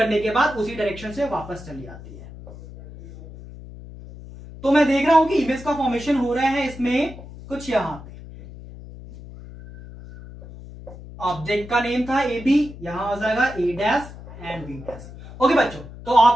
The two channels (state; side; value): noise; left; hum, 15 dB below the sound